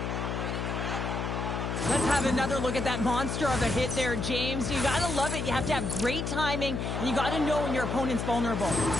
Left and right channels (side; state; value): left; noise; hum, 2 dB below the sound